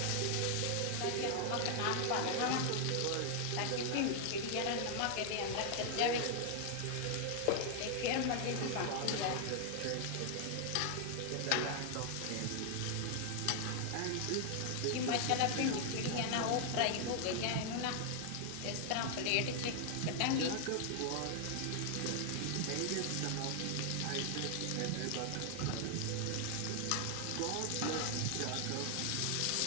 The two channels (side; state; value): both; different; correlation 0.00